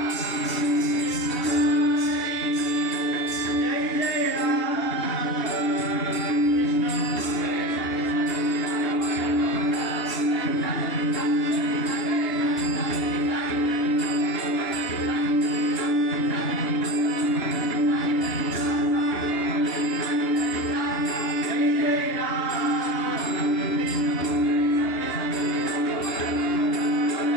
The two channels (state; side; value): late; right; 2.8 ms